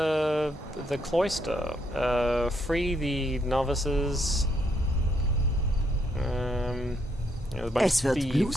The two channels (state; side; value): normal; both; correlation 0.75